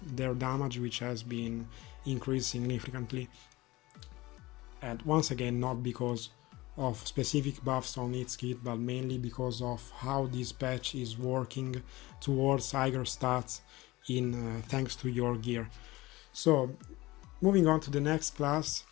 their damage, which has been increased significantly. And once again, not because of specific buffs on its kit, but mainly because of how this patch is working towards higher stats thanks to your gear. So, moving on to the next class,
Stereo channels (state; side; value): quieter; right; 20.0 dB